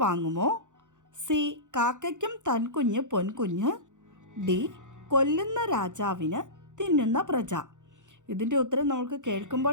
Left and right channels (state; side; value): late; left; 0.86 ms